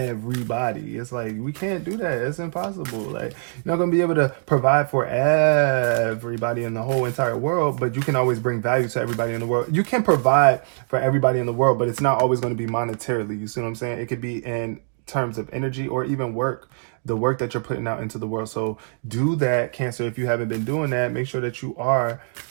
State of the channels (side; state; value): left; silent; digital silence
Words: It's like, we can't do that. It's impossible. Like, you're not going to be able to provide for everybody in the whole entire world, but you can always bring value to everybody in the world. You can provide for everybody in the world, but it's not always going to be monetarily. You see what I'm saying? It could be in terms of energy or even work, the work that you're putting out into the world. So do that, Cancer. If you haven't been doing that, make sure that you are,